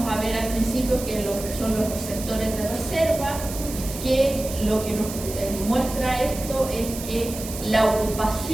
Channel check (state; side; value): noise; right; hiss, 10 dB below the sound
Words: a ver al principio, que son los receptores de reserva, que lo que nos muestra esto es que la